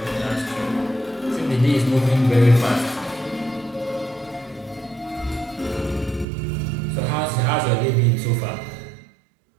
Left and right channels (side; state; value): left; drops out; at 6.2 s